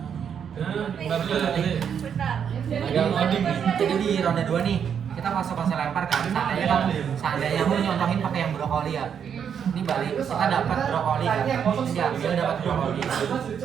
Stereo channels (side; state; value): left; quieter; 7.8 dB